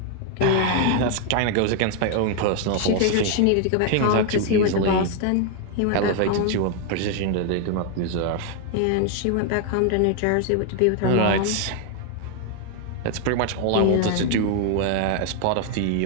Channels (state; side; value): different; both; correlation 0.00